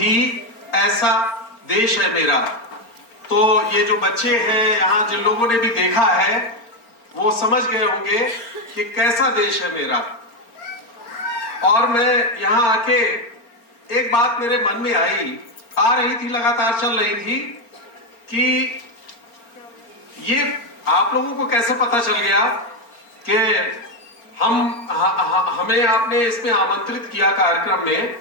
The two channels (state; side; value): late; right; 4.4 ms